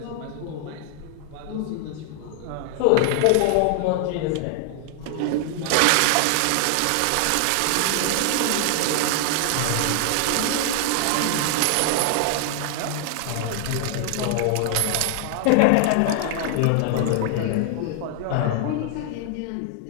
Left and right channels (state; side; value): different; both; correlation 0.00